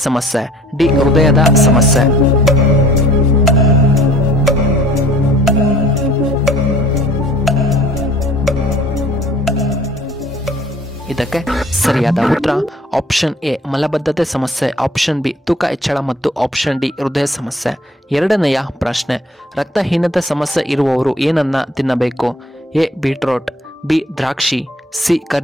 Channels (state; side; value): normal; both; correlation 0.53